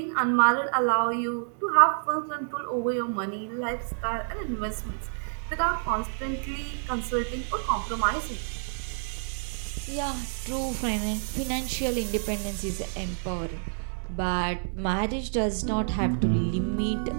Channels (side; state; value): left; silent; digital silence